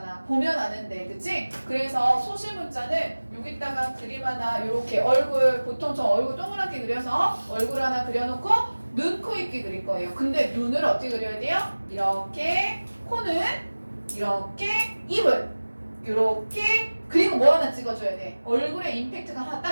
보면 아는데, 그치? 그래서 소실 문자는 여기다가 그림 하나 이렇게 얼굴, 보통 저 얼굴 동그랗게 그려서 얼굴 하나 그려놓고 눈, 코, 입기 그릴 거예요. 근데 눈을 어떻게 그려야 돼요? 이렇게, 코는 이렇게, 입을 이렇게, 그리고 뭐 하나 찍어줘야 돼? 얼굴에 임팩트가 하나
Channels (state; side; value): inverted; both; correlation -1.00